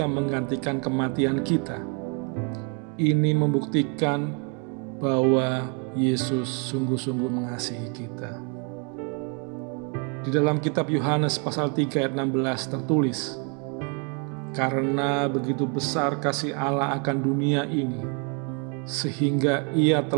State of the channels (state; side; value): quieter; left; 36.9 dB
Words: menggantikan kematian kita. Ini membuktikan bahwa Yesus sungguh-sungguh mengasihi kita. Di dalam kitab Yohanes pasal 3 ayat 16 tertulis, karena begitu besar kasih Allah akan dunia ini, sehingga Ia